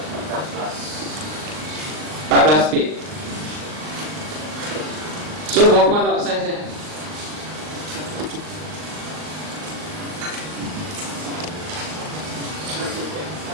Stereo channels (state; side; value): late; left; 39 ms